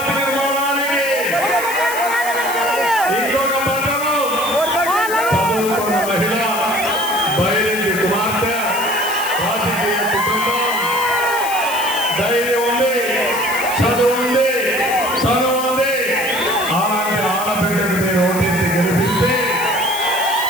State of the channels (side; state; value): left; noise; hiss, 9 dB below the sound